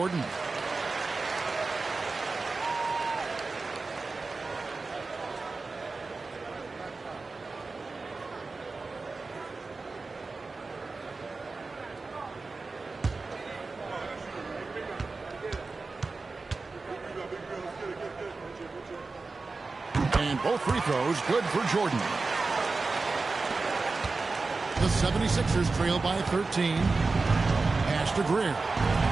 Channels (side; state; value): left; quieter; 3.9 dB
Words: And both free throws good for Jordan. The 76ers trail by 13. Pass to Greer.